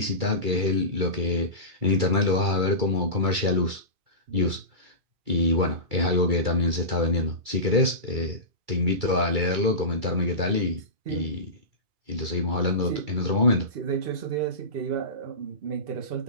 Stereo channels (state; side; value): late; left; 2.3 ms